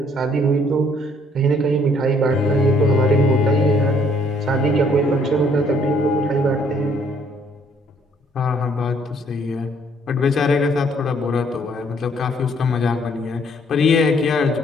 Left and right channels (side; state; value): both; normal; correlation 0.64